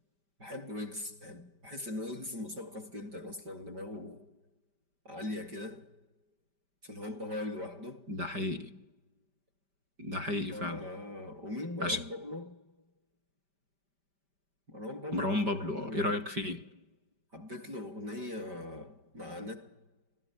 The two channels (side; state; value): left; late; 5.1 ms